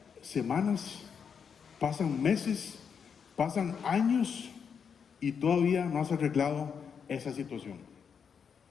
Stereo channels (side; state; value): right; quieter; 6.8 dB